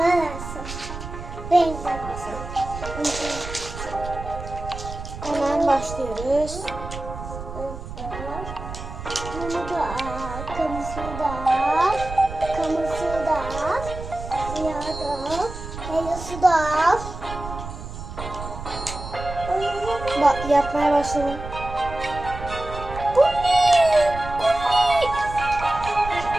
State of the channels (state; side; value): noise; right; rumble, 10 dB below the sound